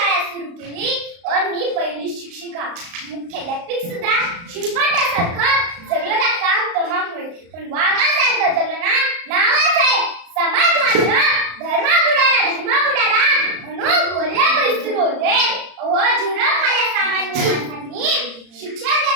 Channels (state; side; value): late; left; 35 ms